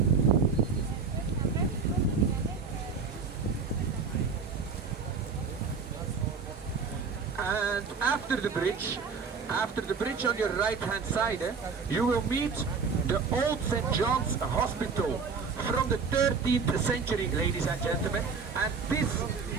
And after the bridge on your right hand side, you will meet the old St. John's Hospital from the 13th century, ladies and gentlemen. And this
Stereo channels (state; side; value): quieter; left; 5.2 dB